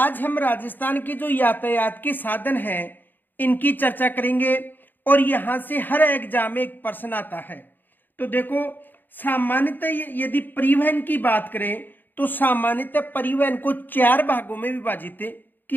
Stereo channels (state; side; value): late; right; 0.090 ms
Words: हम राजस्थान के जो यातायात के साधन हैं इनकी चर्चा करेंगे और यहाँ से हर एग्जाम में एक प्रश्न आता है। तो देखो, सामान्यतः यदि परिवहन की बात करें तो सामान्यतः परिवहन को 4 भागों में विभाजित